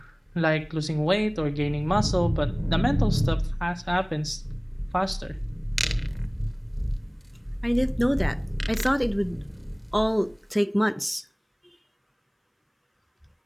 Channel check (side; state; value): both; identical; correlation 1.00